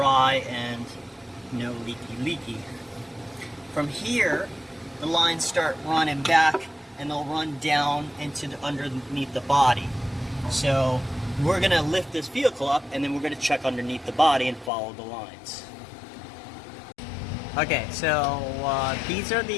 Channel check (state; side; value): drops out; right; at 14.7 s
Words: and no leaky. From here, the lines start running back, and they'll run down into underneath the body. So we're going to lift this vehicle up, and then we're going to check underneath the body and follow the lines. Okay, so these are